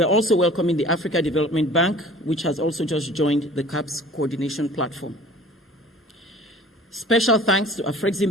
also welcoming the Africa Development Bank, which has also just joined the CAAPs coordination platform. Special thanks to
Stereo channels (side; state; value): both; normal; correlation 0.47